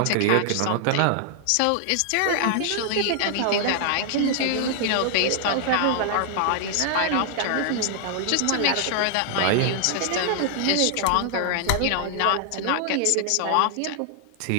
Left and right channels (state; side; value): different; both; correlation 0.00